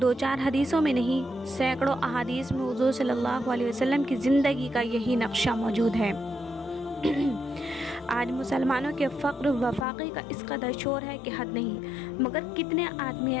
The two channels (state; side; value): drops out; right; at 9.9 s